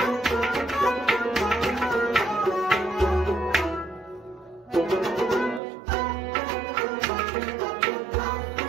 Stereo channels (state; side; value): drops out; left; at 5.6 s